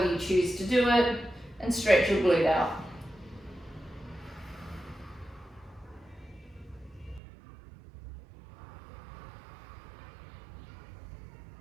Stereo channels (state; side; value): drops out; left; at 7.2 s